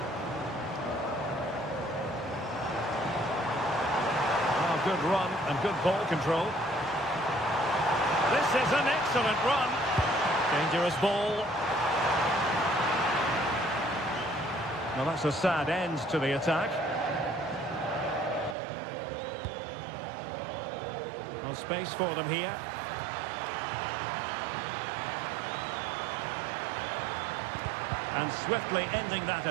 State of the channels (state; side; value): drops out; left; at 18.6 s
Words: Oh, good run and good ball control. This is an excellent run. Dangerous ball. Now that's a sad end to the attack. No space for them here. And swiftly ending that